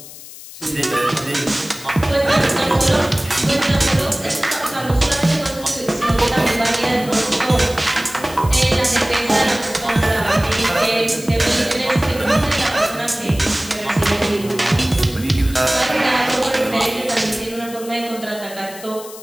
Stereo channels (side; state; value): left; noise; hiss, 16 dB below the sound